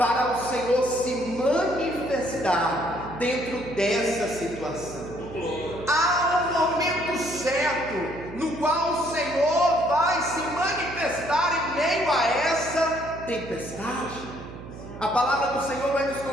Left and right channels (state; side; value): noise; right; hum, 13 dB below the sound